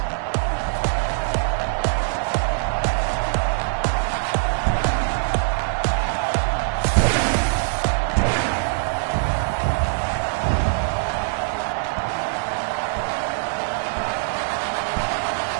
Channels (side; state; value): left; silent; digital silence